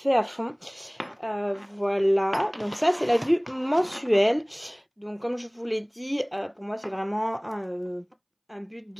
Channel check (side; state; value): both; identical; correlation 1.00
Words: à fond. Voilà, donc ça c'est la vue mensuelle. Donc comme je vous l'ai dit, pour moi c'est vraiment un but